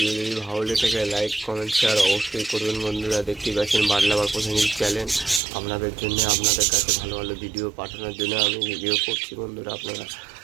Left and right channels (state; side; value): drops out; left; at 5.4 s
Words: যদি ভালো লেগে থাকে লাইক কমেন্ট শেয়ার অবশ্যই করবেন বন্ধুরা। দেখতেই পাচ্ছেন বাটলাবার পছন্দের চ্যানেল, আপনাদের জন্য আপনাদের কাছে ভালো ভালো ভিডিও পাঠানোর জন্য আমি ভিডিও করছি বন্ধুরা। আপনারা